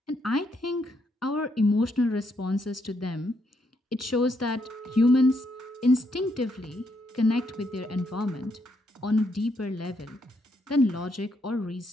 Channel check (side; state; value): both; normal; correlation 0.76